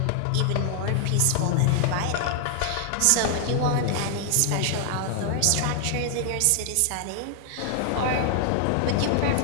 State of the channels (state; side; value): different; both; correlation 0.00